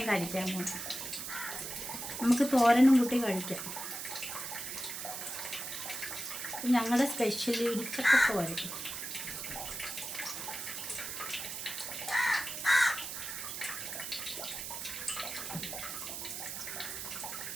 കഴിക്കാൻ പോകും. നമുക്ക് തോരനും കൂട്ടി കഴിക്കാം. ഞങ്ങളുടെ സ്പെഷ്യൽ ഇടിച്ചക്ക തോരൻ.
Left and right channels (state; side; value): noise; right; hiss, 6 dB below the sound